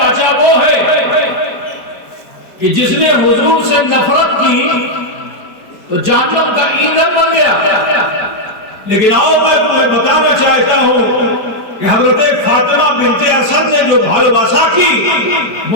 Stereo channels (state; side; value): late; right; 4.6 ms